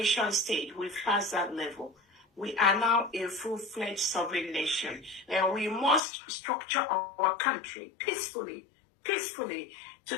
stage. We've passed that level. We are now a full-fledged sovereign nation, and we must structure our country peacefully to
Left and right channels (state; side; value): drops out; right; at 6.0 s